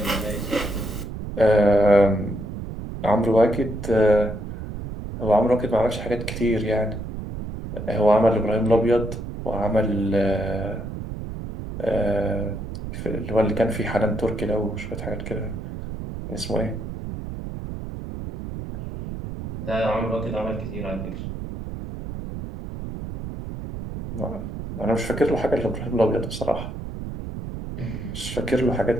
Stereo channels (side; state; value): right; noise; rumble, 8 dB below the sound